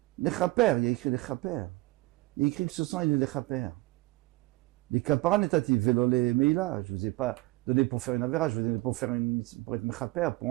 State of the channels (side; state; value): left; quieter; 21.5 dB